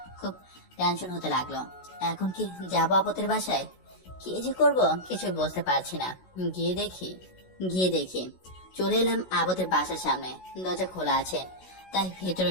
খুব টেনশন হতে লাগলো। এখন কি যাবো আপদের বাসায়? কি যে করব কিছু বুঝতে পারছি না। গিয়ে দেখি চলে এলাম আপদের বাসার সামনে। দরজা খোলা আছে, তাই ভেতরে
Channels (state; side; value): late; right; 16 ms